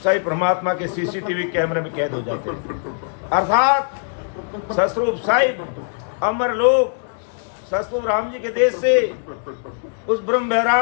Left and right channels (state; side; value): silent; right; digital silence